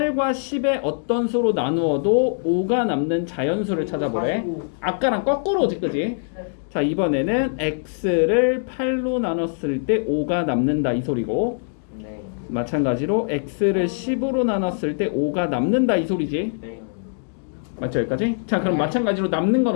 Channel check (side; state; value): right; silent; digital silence